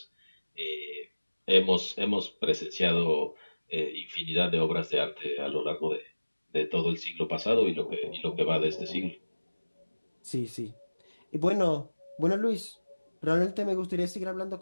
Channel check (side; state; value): both; inverted; correlation -1.00